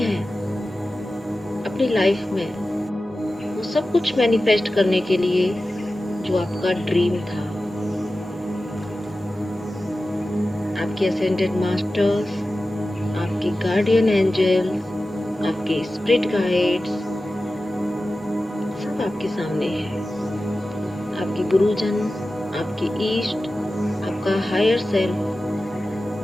अपनी लाइफ में वो सब कुछ मैनिफेस्ट करने के लिए जो आपका ड्रीम था। आपके असेंडेड मास्टर्स, आपके गार्डियन एंजल, आपके स्पिरिट गाइड्स सब आपके सामने हैं। आपके गुरुजन, आपके ईस्ट, आपका हायर सेल्फ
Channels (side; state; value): both; normal; correlation 0.94